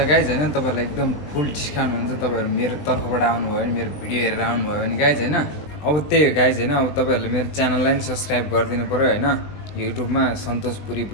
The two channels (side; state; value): right; late; 20 ms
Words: गाइज होइन। तपाईँहरूलाई एकदम फुल डिस्काउन्ट हुन्छ तपाईँहरू मेरो तर्फबाट आउनुभयो भने, मेरो भिडियो हेरेर आउनुभयो भने गाइज होइन। अब त्यही हो गाइज होइन। अब तपाईँहरूले मेरो च्यानललाई पनि सब्सक्राइब गरिदिनु पऱ्यो होइन। युट्युबमा सन्तोष पुरी